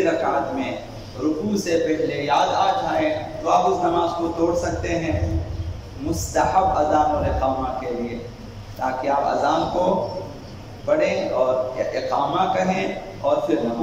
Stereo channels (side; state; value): both; identical; correlation 1.00